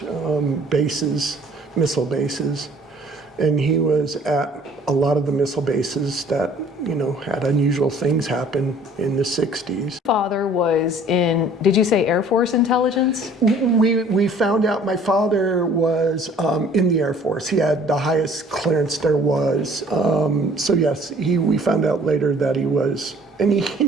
bases, missile bases. And he was at a lot of the missile bases that, you know, had unusual things happen in the 60s. Father was in, did you say Air Force intelligence? We found out my father was in the Air Force. He had the highest clearance there was. So yes, we found out later that he was, and he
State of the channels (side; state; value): both; normal; correlation 0.54